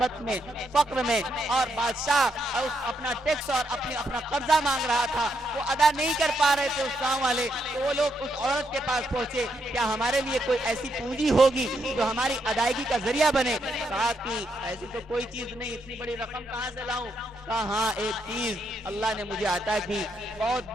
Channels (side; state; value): both; normal; correlation 0.78